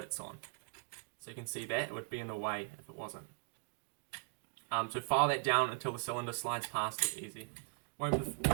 on. So you can see that it would be in the way if it wasn't. So file that down until the cylinder slides past it easy. Won't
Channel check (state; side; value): quieter; left; 34.3 dB